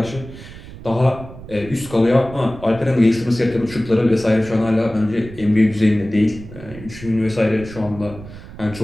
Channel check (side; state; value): right; noise; rumble, 15 dB below the sound